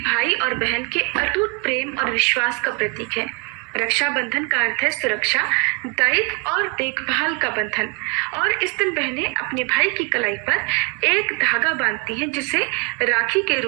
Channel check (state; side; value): quieter; left; 32.5 dB